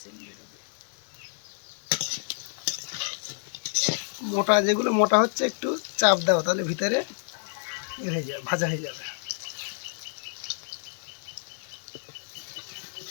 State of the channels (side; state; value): right; silent; digital silence